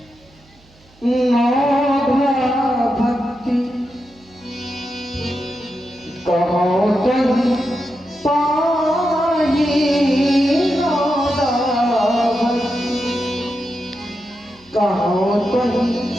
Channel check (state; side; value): noise; right; hum, 29 dB below the sound